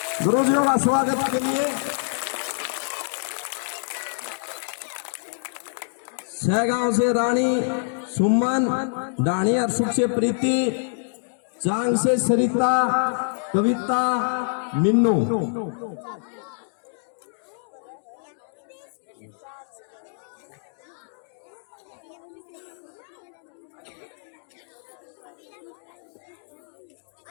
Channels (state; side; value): silent; right; digital silence